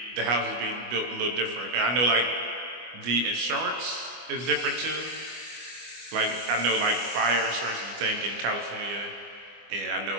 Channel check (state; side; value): late; left; 25 ms